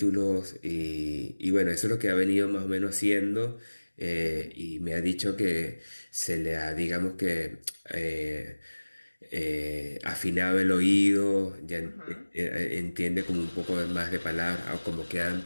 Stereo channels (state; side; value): inverted; both; correlation -1.00